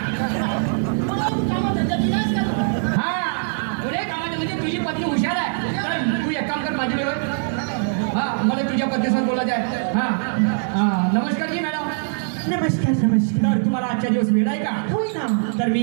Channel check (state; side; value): silent; left; 55 dB below the other